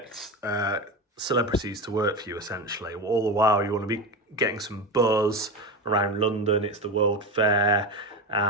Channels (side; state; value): both; normal; correlation 0.21